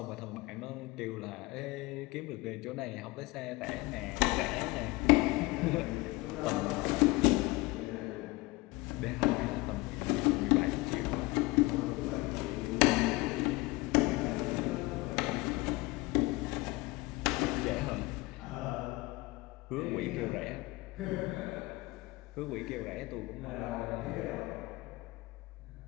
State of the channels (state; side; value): quieter; right; 22.2 dB